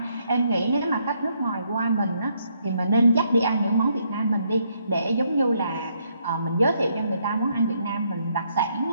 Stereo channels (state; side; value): inverted; both; correlation -0.73